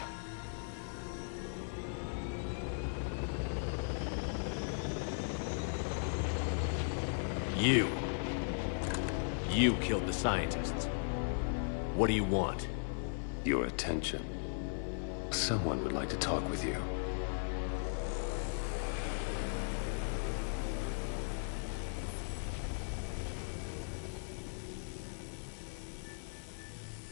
You killed the scientists. What do you want? Your attention. Someone would like to talk with you.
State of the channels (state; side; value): silent; right; 53 dB below the other